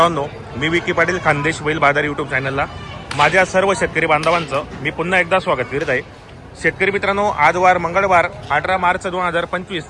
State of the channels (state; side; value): identical; both; correlation 1.00